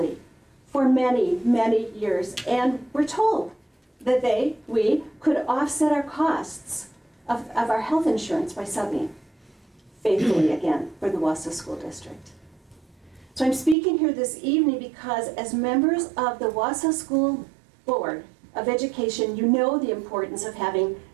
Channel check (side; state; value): left; drops out; at 13.8 s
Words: for many, many years, and we're told that we could offset our costs of our health insurance by subbing faithfully again for the Wausau School District. So I'm speaking here this evening because as members of the Wausau School Board of Education, you know the importance of having